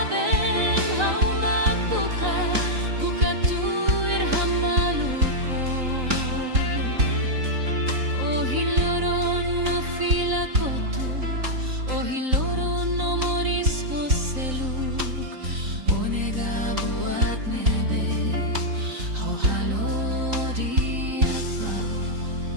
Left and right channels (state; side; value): late; left; 3.9 ms